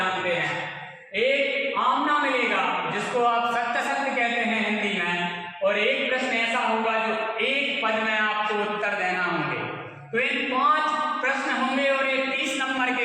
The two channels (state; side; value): identical; both; correlation 1.00